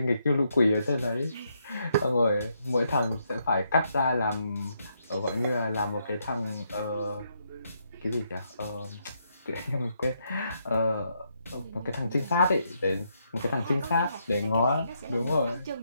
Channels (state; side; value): inverted; both; correlation -0.77